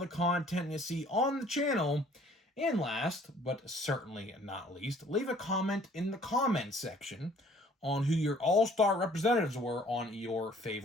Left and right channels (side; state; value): both; normal; correlation 0.57